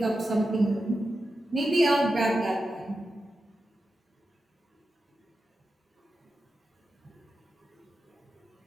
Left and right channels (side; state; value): both; normal; correlation 0.90